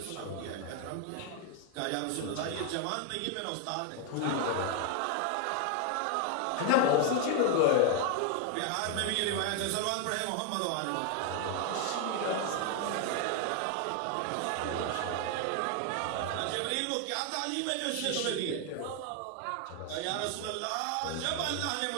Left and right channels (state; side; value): different; both; correlation 0.01